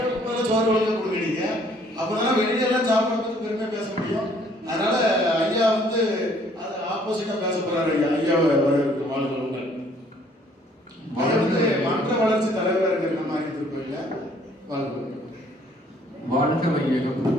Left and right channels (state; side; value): normal; both; correlation 0.61